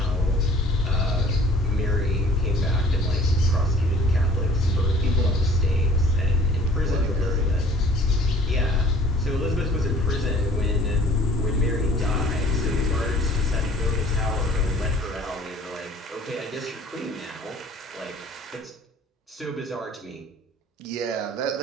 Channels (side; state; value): both; normal; correlation 0.52